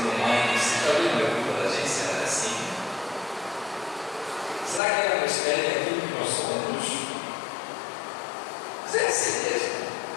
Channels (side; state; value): right; drops out; at 4.8 s